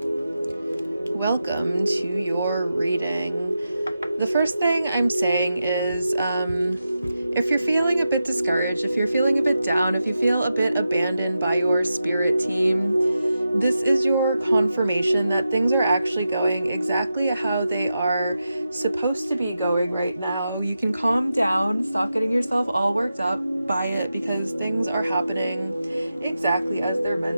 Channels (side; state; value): both; inverted; correlation -0.89